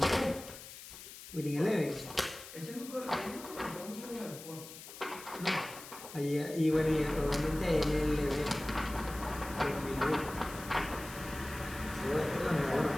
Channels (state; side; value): noise; left; hiss, 14 dB below the sound